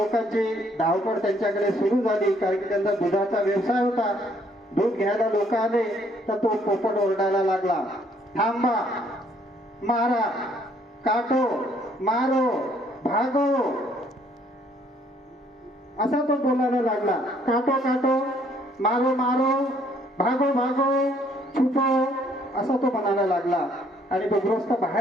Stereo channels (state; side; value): normal; both; correlation 0.65